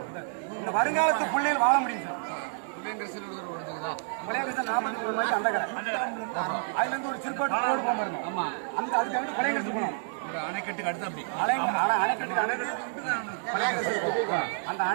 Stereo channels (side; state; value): left; silent; 59 dB below the other